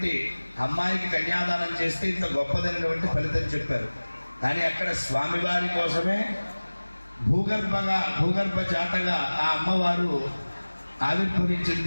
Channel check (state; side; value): inverted; both; correlation -1.00